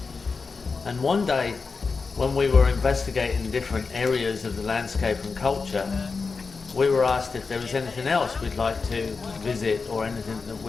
And one day when we were investigating different areas of the landscape and culture, we were asked if there was anything else we'd like to visit or anything that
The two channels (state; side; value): quieter; right; 4.6 dB